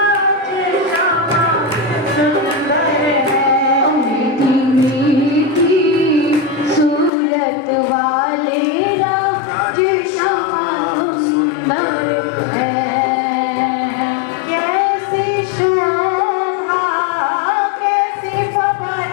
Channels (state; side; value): drops out; right; at 7.1 s